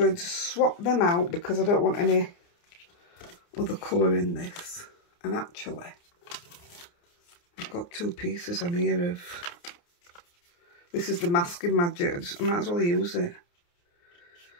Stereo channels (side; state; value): right; late; 29 ms